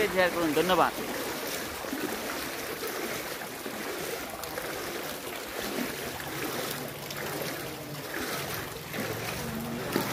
শেয়ার করুন। ধন্যবাদ।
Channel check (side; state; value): both; identical; correlation 1.00